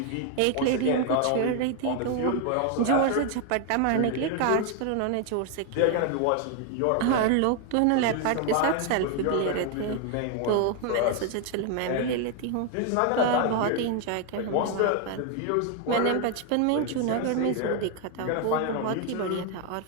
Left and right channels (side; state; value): both; different; correlation 0.01